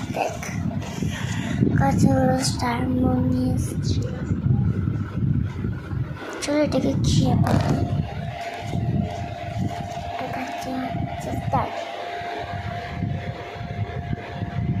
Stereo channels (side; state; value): both; identical; correlation 1.00